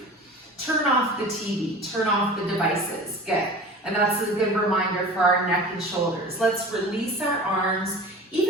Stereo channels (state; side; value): normal; both; correlation 0.38